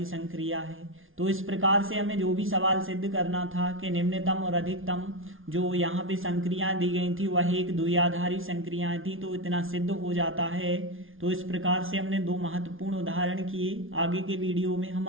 संक्रिया है। तो इस प्रकार से हमें जो भी सवाल सिद्ध करना था कि निम्नतम और अधिकतम जो यहाँ पे संक्रियाएं दी गई थी वह एक द्विआधारी संक्रियाएं थी, तो इतना सिद्ध हो जाता है। तो इस प्रकार से हमने 2 महत्वपूर्ण उदाहरण किए। आगे के वीडियो में हम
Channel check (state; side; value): late; left; 0.58 ms